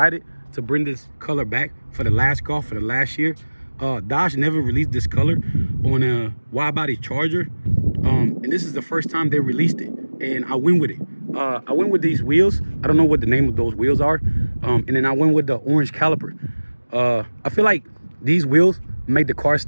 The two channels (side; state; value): both; inverted; correlation -1.00